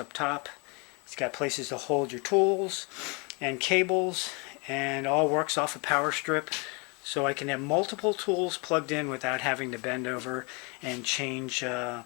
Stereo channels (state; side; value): quieter; right; 31.5 dB